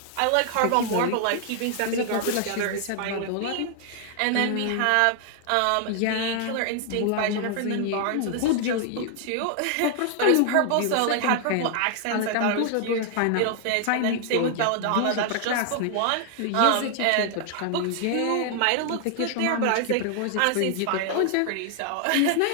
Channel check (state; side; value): different; both; correlation 0.00